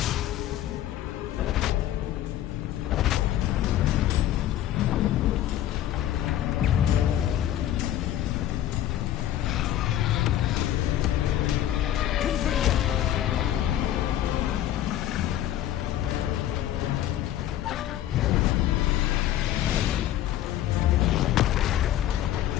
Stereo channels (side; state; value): right; quieter; 12.3 dB